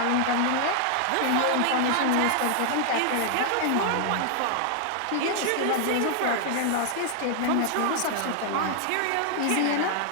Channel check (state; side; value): different; both; correlation 0.00